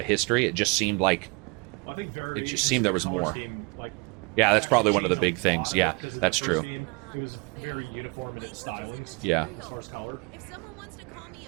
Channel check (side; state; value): left; quieter; 30.2 dB